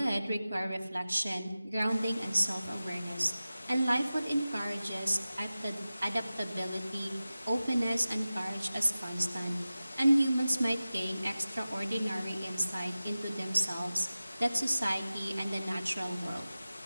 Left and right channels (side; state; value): both; inverted; correlation -0.95